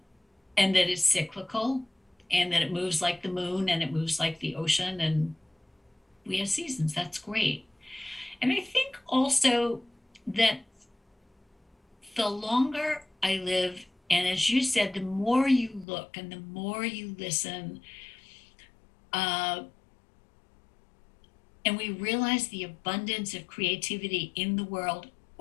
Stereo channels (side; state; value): right; drops out; at 15.9 s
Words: and that it's cyclical and that it moves like the moon and it moves like the ocean, and we have seasons. That's great. And I think also that the longer I live, and as you said, the more you look and the more you listen, uh, and we realize the abundance of creativity in the world